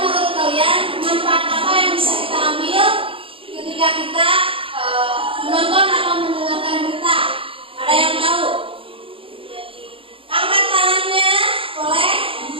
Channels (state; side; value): late; left; 0.26 ms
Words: menurut kalian manfaat apa yang bisa kita ambil ketika kita menonton atau mendengarkan berita? Ada yang tahu? Angkat tangannya, boleh?